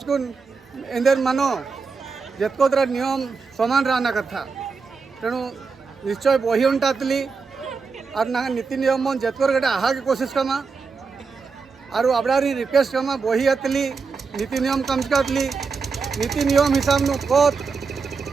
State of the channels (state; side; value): quieter; left; 4.9 dB